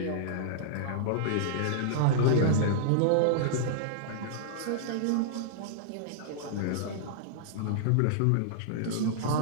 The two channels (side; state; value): both; different; correlation -0.02